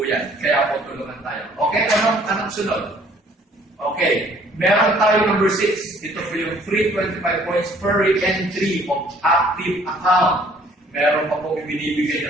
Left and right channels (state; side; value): normal; both; correlation 0.58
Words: yan. Kaya po tulungan tayo. Okay, anong sunod? Okay, meron tayo number 6. Ito po yung free 25 points per entry of active account. Meron pa po